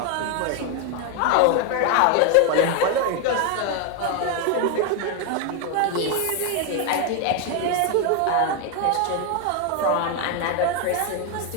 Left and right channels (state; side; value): different; both; correlation 0.01